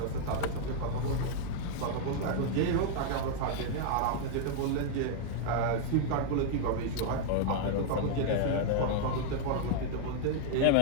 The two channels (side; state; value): both; different; correlation -0.01